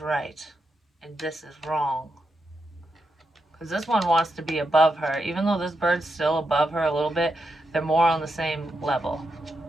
and this is wrong. Because this one wants to be above her. Even though this bird's still above her a little bit, they're more on the same level.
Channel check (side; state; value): both; normal; correlation 0.84